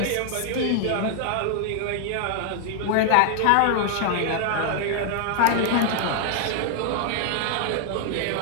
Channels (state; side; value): different; both; correlation 0.00